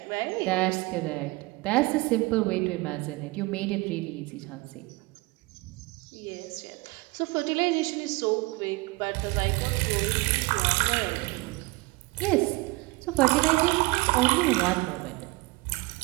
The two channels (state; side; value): quieter; left; 23.5 dB